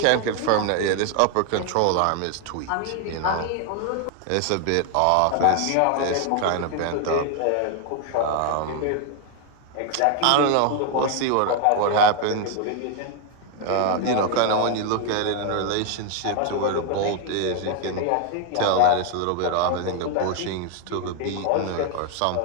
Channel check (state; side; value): different; both; correlation 0.00